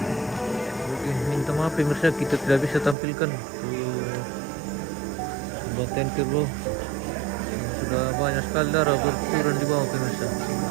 Oke, minta maaf pemirsa kita tidak bisa tampilkan baten kerbau. Sudah banyak sekali darah berturun di bawah pemirsa.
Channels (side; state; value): left; drops out; at 3.0 s